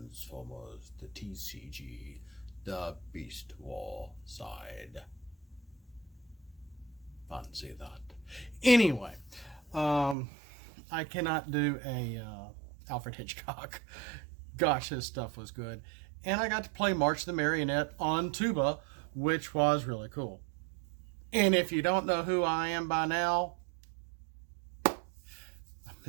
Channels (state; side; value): drops out; left; at 10.2 s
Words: the TCG, the Beast War side. Fancy that. Anyway, I cannot do a Alfred Hitchcock. Gosh, his stuff was good. And I got to play March the Marionette on tuba, which was really cool. And if you don't know who I am by now, I